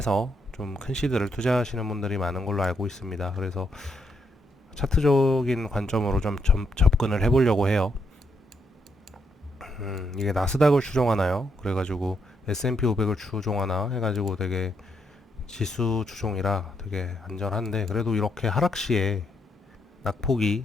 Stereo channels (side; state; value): both; normal; correlation 0.77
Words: 좀 큰 시드를 투자하시는 분들이 많은 걸로 알고 있습니다. 그래서 차트적인 관점으로 좀 접근을 해보려고 해요. 이게 나스닥을 추종하나요? 그래가지고 S&P 500을 추종하나 해가지고 되게 지수 추종이라 되게 안전한데, 그래도 이렇게 하락 시에